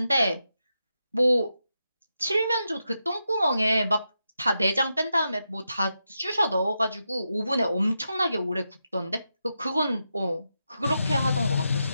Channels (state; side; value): inverted; both; correlation -0.86